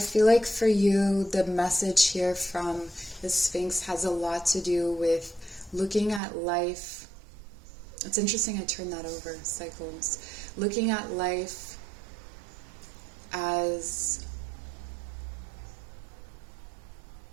like for you, the message here from the Sphinx has a lot to do with looking at life. It's interesting I turned that over, cycles. Looking at life as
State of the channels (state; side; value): drops out; left; at 6.2 s